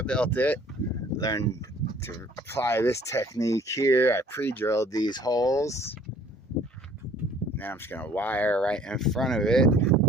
built it. Learned to apply this technique here. I pre-drilled these holes. Now I'm just gonna wire right in front of it, and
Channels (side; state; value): both; normal; correlation 0.55